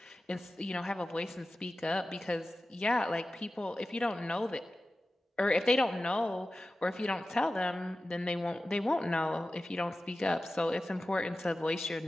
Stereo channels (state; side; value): normal; both; correlation 0.94